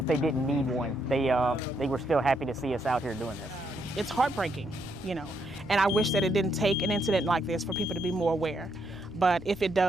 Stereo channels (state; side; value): normal; both; correlation 0.76